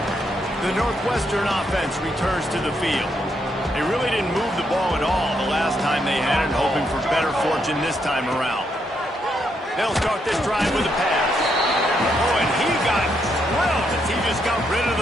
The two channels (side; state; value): both; normal; correlation 0.77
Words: The Northwestern offense returns to the field. They really didn't move the ball at all the last time they had it, hoping for better fortune this time around. They'll start this drive with a pass. Oh, and he got drilled as he just got rid of